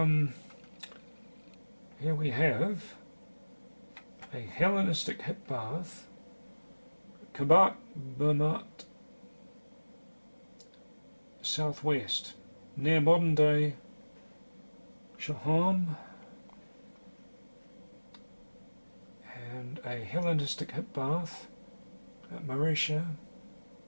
Here we have a Hellenistic hip bath, Kabat Bermat, southwest, near modern-day Shaham, and a Hellenistic hip bath at Marisha.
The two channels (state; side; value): inverted; both; correlation -1.00